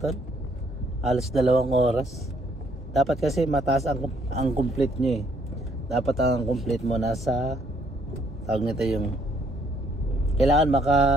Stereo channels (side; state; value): both; normal; correlation 0.67